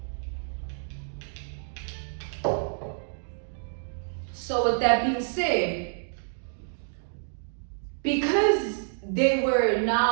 So with that being said, because they were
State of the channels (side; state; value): left; silent; digital silence